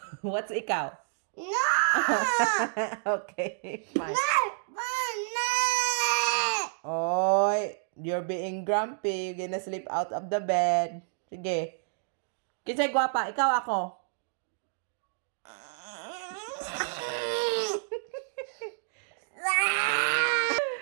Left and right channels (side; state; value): left; silent; digital silence